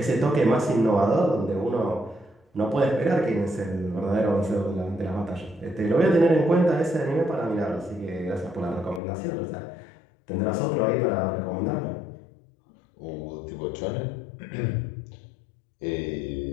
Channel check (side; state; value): right; drops out; at 9.0 s